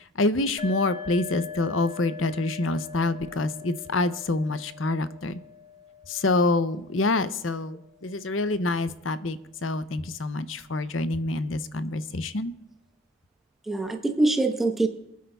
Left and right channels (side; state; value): both; normal; correlation 0.45